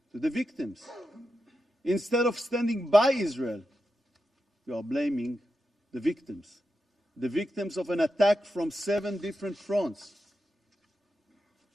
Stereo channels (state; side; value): normal; both; correlation 0.88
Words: to the victims. Instead of standing by Israel, we are blaming the victims of an attack from 7 different fronts.